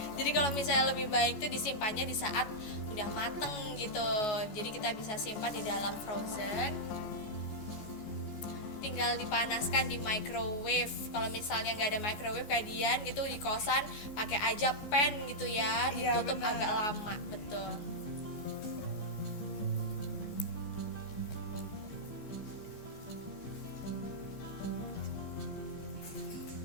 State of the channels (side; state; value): right; late; 15 ms